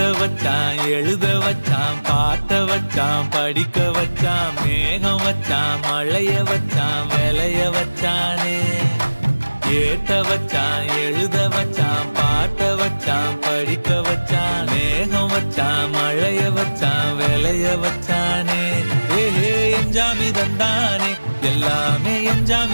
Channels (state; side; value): inverted; both; correlation -1.00